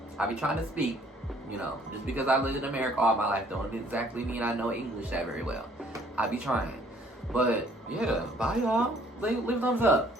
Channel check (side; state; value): both; normal; correlation 0.60